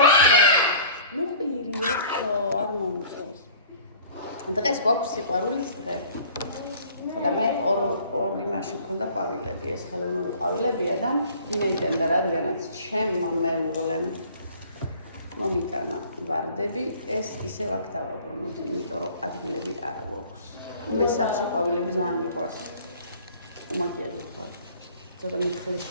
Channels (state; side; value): inverted; both; correlation -0.49